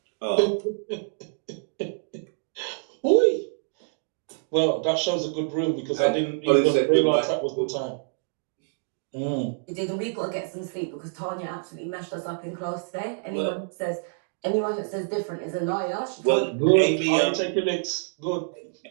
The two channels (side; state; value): left; silent; digital silence